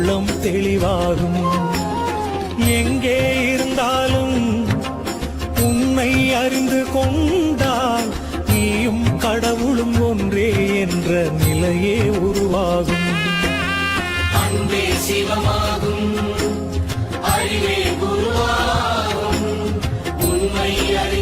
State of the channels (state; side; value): identical; both; correlation 1.00